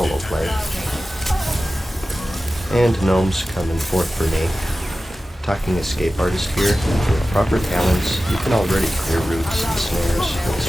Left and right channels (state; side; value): normal; both; correlation 0.95